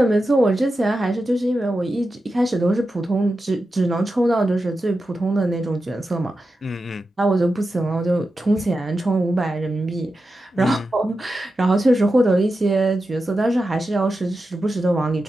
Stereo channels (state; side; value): normal; both; correlation 0.91